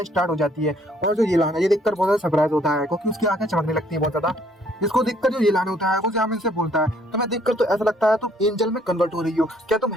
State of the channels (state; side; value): normal; both; correlation 0.64